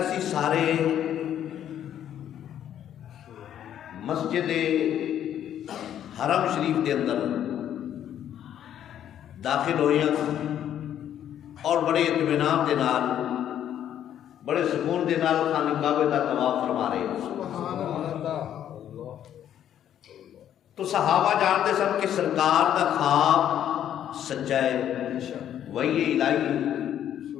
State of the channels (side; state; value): right; quieter; 10.4 dB